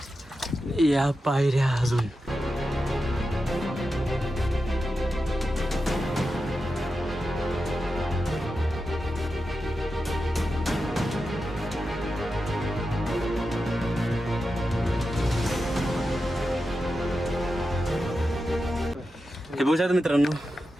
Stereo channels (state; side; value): normal; both; correlation 0.90